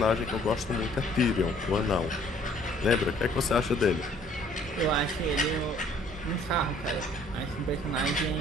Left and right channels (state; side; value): normal; both; correlation 0.58